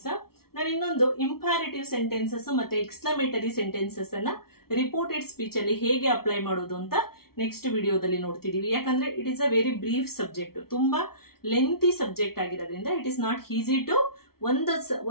ನಾನು ಇನ್ನೊಂದು ಇಂಪ್ಯಾರೇಟಿವ್ ಸೆಂಟೆನ್ಸಸ್ ಮತ್ತೆ ಎಕ್ಸ್ಕ್ಲಮೇಟರಿ ಸೆಂಟೆನ್ಸಸ್ ಅನ್ನ ರಿಪೋರ್ಟೆಡ್ ಸ್ಪೀಚ್ ಅಲ್ಲಿ ಹೇಗೆ ಅಪ್ಲೈ ಮಾಡೋದು ಅಂತ ನೆಕ್ಸ್ಟ್ ವಿಡಿಯೋದಲ್ಲಿ ನೋಡ್ತಿದೀವಿ. ಯಾಕಂದ್ರೆ it is a very brief subject, ತುಂಬಾ ಲೆಂತಿ ಸಬ್ಜೆಕ್ಟ್ ಆಗಿರೋದ್ರಿಂದ it is not easy to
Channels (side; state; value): right; late; 0.94 ms